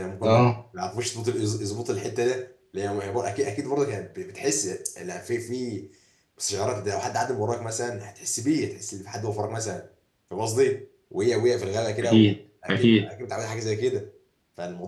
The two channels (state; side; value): identical; both; correlation 1.00